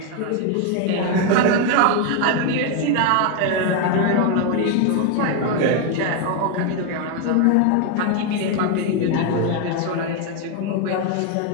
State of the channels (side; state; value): both; different; correlation 0.01